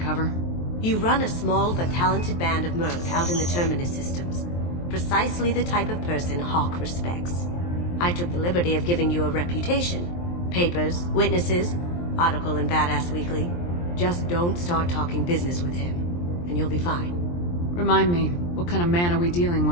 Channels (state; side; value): late; right; 23 ms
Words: You run a small but talented band of mercs out in the Terminus systems. Precisely the type of person Hawk respects. I took the liberty of giving you a reputation. Papers, witnesses, article in Badass Weekly. Just don't start talking business with him, and you'll be fine. Remind me, what kind of man are we dealing